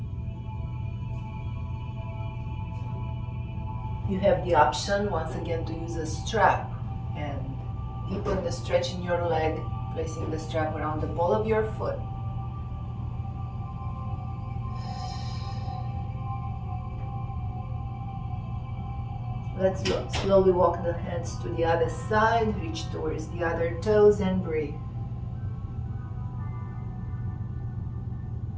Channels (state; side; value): identical; both; correlation 1.00